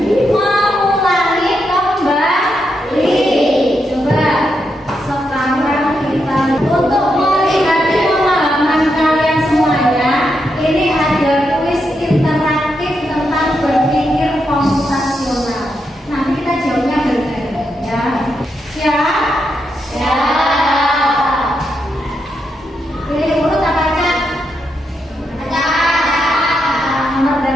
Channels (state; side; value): normal; both; correlation 0.83